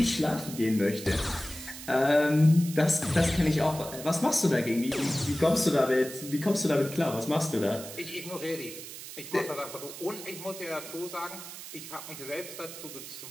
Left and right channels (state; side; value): noise; right; hiss, 12 dB below the sound